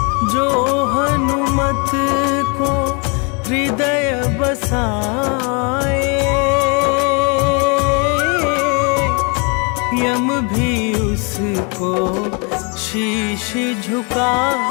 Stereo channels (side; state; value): right; quieter; 33.9 dB